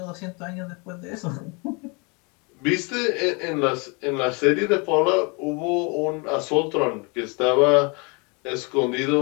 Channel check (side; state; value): right; quieter; 30.9 dB